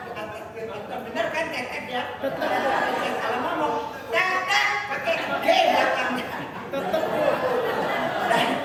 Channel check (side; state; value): both; identical; correlation 1.00